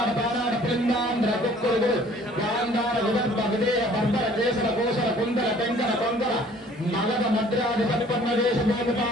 बानाड पिंडांध्र कुक्कुलु गांधार विदर्भ विदेह बर्बर केसर कोसर कुंदर तेंकन कोंकण मगध मद्रादि संपन्न देश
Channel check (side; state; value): both; normal; correlation 0.54